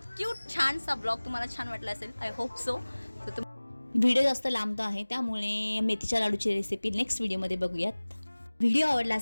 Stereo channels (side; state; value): both; inverted; correlation -1.00